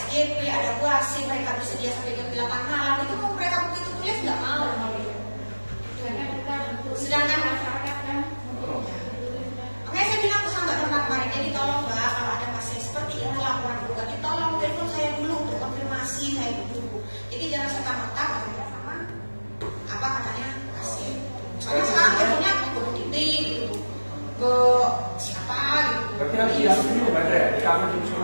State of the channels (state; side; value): inverted; both; correlation -1.00